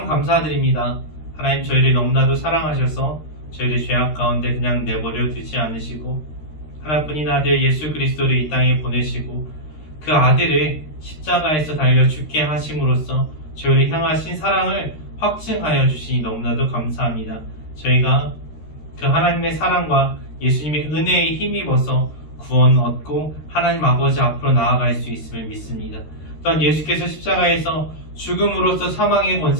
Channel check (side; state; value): right; late; 13 ms